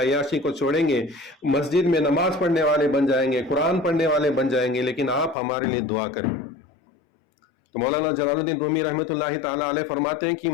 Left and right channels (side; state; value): right; drops out; at 5.4 s